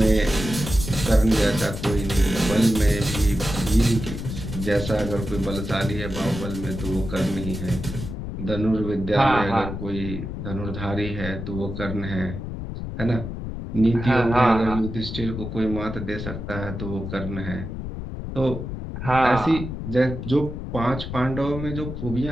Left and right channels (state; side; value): noise; left; rumble, 7 dB below the sound